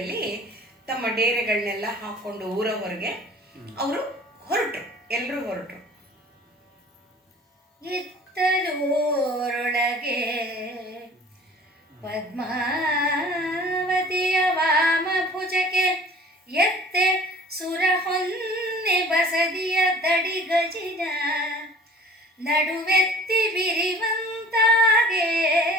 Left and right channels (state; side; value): normal; both; correlation 0.47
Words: ತಮ್ಮ ಡೇರೆಗಳನ್ನೆಲ್ಲ ಹಾಕ್ಕೊಂಡು ಊರ ಹೊರಗೆ ಅವರು ಎಲ್ಲರೂ ಹೊರಟರು. ಇತ್ತಲೂರೊಳಗೆ ಪದ್ಮಾವತಿಯ ವಾಮ ಭುಜಕ್ಕೆ ಎತ್ತೆ ಸುರ ಹೊನ್ನೆ ಬಸದಿಯ ದಡಿ ಗಜಿನ ನಡುವೆತ್ತಿ ಬಿರಿವಂತ ತಾಗೆ